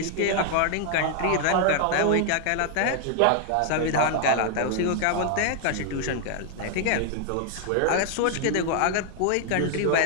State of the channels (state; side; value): different; both; correlation 0.00